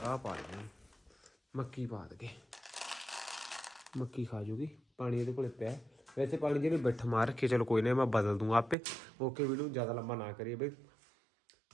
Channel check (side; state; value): left; drops out; at 8.8 s